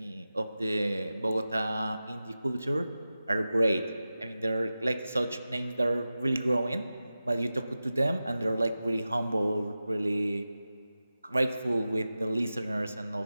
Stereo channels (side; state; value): both; inverted; correlation -0.94